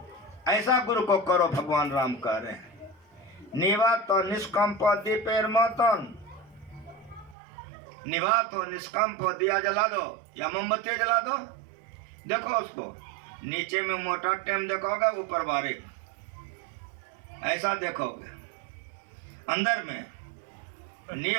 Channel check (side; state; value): left; drops out; at 7.4 s